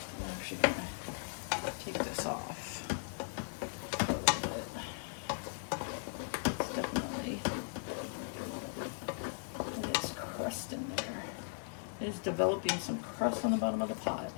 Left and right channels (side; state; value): right; silent; 53 dB below the other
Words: actually gonna take this off. It's definitely, it is crust in there. It is developing some crust on the bottom of the pot,